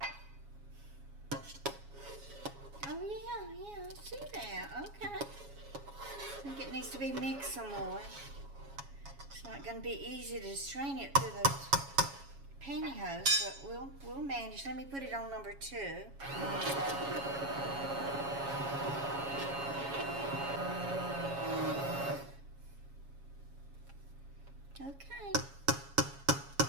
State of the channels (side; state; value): left; late; 7.2 ms